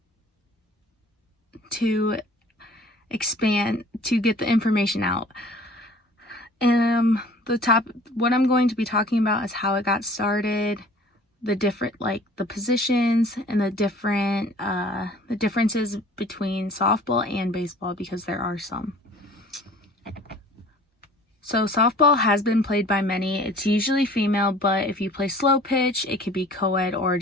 expand, to get the information out. What I'm going to be talking about is how it got started, the positions, and the differences between softball and baseball, because there are some. So softball has been played by many. It's usually female, but if you play slow pitch, it could be co-ed or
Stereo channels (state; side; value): normal; both; correlation 0.49